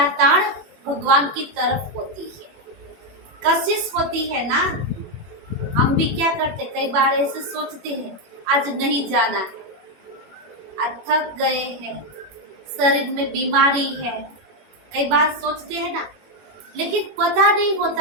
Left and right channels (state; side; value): late; left; 21 ms